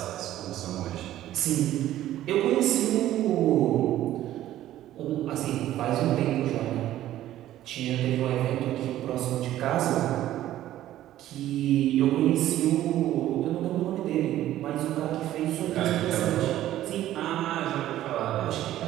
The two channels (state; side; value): quieter; left; 13.4 dB